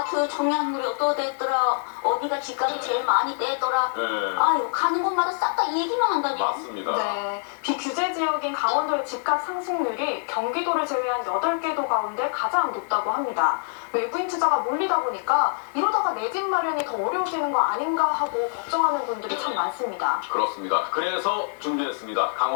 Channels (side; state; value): right; silent; 58 dB below the other